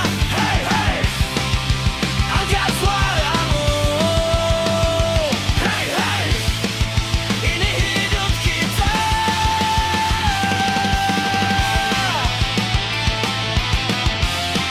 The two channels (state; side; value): identical; both; correlation 1.00